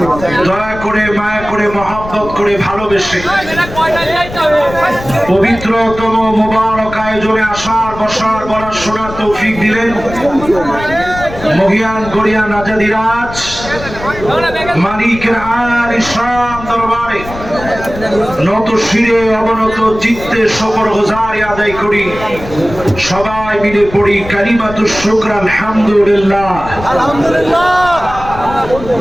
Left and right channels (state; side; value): noise; left; rumble, 12 dB below the sound